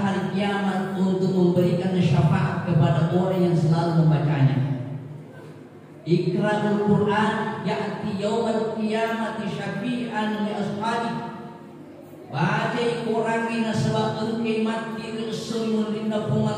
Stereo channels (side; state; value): both; identical; correlation 1.00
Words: hari kiamat untuk memberikan syafaat kepada orang yang selalu membacanya. Iqra'ul Quran ya'ti yawmal qiyamati syafi'an li ashabi. Baca Quran ini sebab engkau mati resul linda